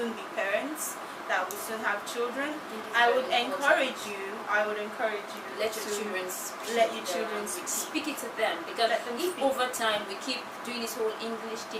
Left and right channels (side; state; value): both; identical; correlation 1.00